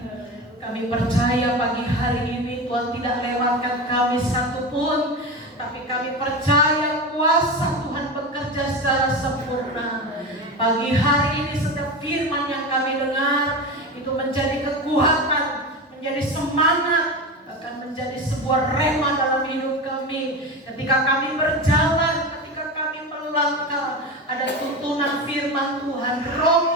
Kami percaya pagi hari ini Tuhan tidak lewatkan kami satupun, tapi kami percaya kuasa Tuhan bekerja secara sempurna. Pagi hari ini setiap firman yang kami dengar itu menjadi kekuatan, menjadi semangat, bahkan menjadi sebuah rema dalam hidup kami. Ketika kami berjalan, ketika kami melangkah, ada tuntunan firman Tuhan, Roh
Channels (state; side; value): normal; both; correlation 0.24